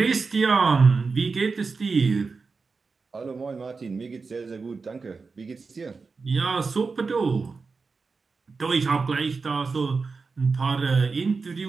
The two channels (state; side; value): quieter; left; 4.5 dB